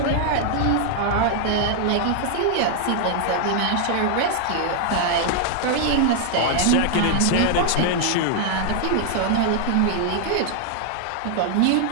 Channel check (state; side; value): different; both; correlation 0.00